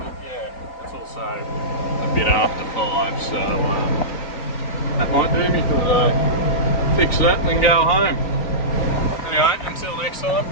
yeah, it's also a bit after 5, so that might do me for the day. Fix that and then go home. Anyway, until next time,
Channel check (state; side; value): late; right; 3.9 ms